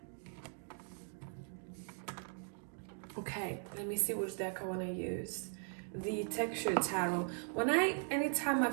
Okay, let me see which deck I want to use. The Texture Tarot. Anytime I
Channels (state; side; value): silent; left; 52 dB below the other